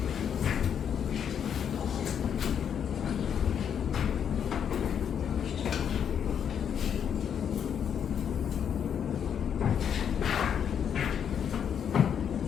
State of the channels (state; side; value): quieter; right; 8.2 dB